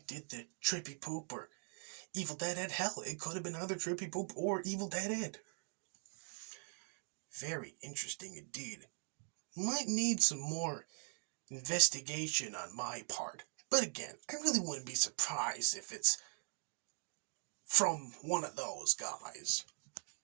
to Troopy Poop or Evil Dead Ed. Hell, it could have been either Troopy Poop or Evil Dead Ed. Very interesting indeed. Might need some more investigation on my part. But again, I really wouldn't be surprised if it's from one of those guys.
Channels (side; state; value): left; silent; 50 dB below the other